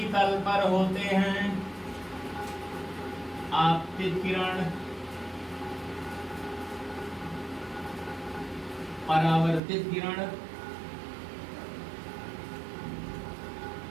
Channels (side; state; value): left; drops out; at 9.6 s